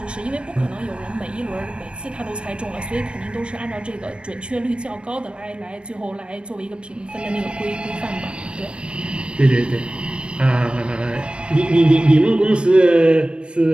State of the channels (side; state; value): left; late; 0.057 ms